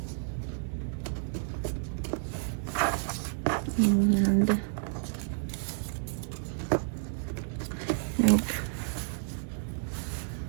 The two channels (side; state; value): left; silent; digital silence